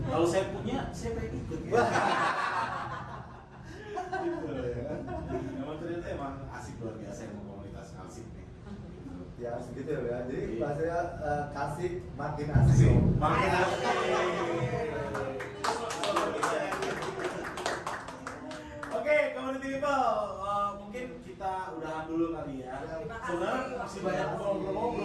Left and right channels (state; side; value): identical; both; correlation 1.00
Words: Kalau saya punya, saya pengen ikut. Ya. Gitu ya. Emang ternyata emang asik luar biasa yang komunitas Kalsik nih. Gitu. Ya segitu ya. Jadi bahasanya Kalsik makin asik. Makin asik. Oke, community people, mungkin kita udahan dulu kali ya. Terima kasih. Sebenarnya masih banyak